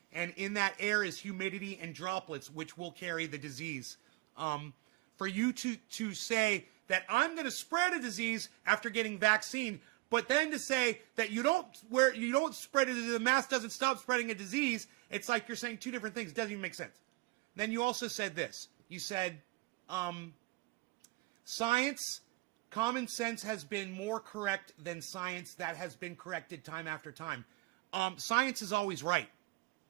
And in that air is humidity and droplets, which will carry the disease. For you to say that I'm going to spread a disease after getting vaccine, but then to say that you don't spread it, the mask doesn't stop spreading a disease, It's like you're saying two different things. It doesn't even make sense. Then you also said this. You said, science, common sense has been more correct than science that has been corrected time after time. Science is always right.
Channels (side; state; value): left; quieter; 22.8 dB